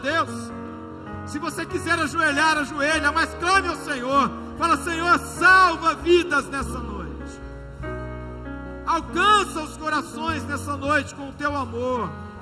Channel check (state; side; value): identical; both; correlation 1.00